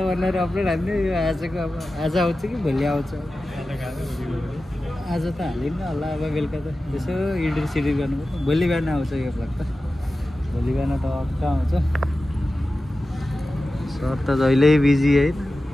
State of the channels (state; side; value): normal; both; correlation 0.94